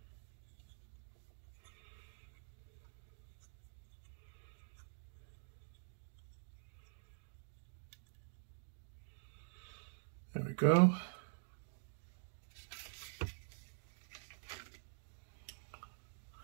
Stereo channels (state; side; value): silent; left; digital silence